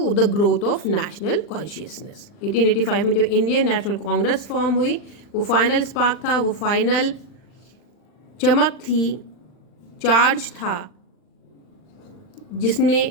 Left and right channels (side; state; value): right; late; 40 ms